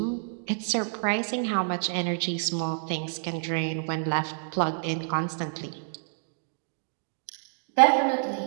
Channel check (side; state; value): left; silent; digital silence